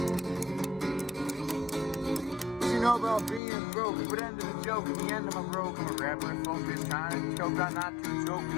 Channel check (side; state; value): right; drops out; at 3.4 s